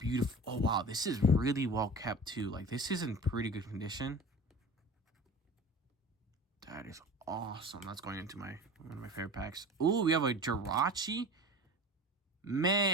Oh, wow. This is really well kept, too. Like, this is in pretty good condition. That is awesome. That's going into one of my favorite packs. Ooh, we have a Jirachi.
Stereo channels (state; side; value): normal; both; correlation 0.35